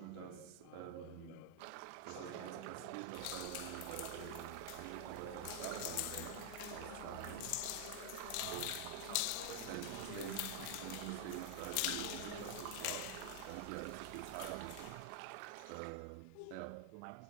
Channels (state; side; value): different; both; correlation 0.00